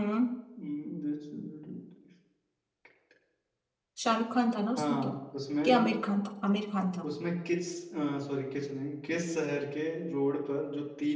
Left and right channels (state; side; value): identical; both; correlation 1.00